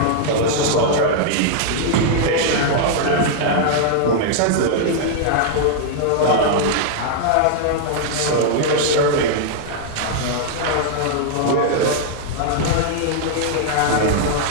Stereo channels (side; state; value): both; different; correlation -0.01